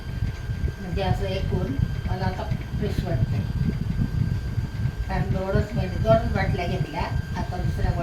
म्हणजे असं एकूण मला आता फ्रेश वाटतंय. कारण 2 बाटल्या घेतल्या, आता दुसऱ्या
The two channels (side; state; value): both; identical; correlation 1.00